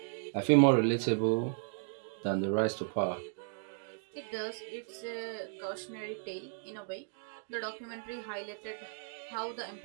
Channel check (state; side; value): silent; left; digital silence